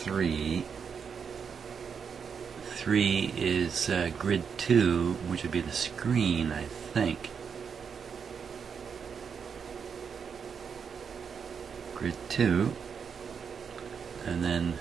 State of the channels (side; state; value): left; quieter; 6.5 dB